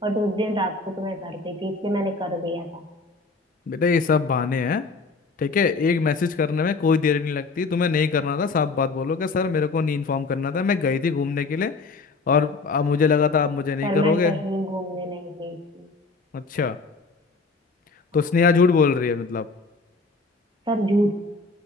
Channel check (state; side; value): quieter; right; 4.0 dB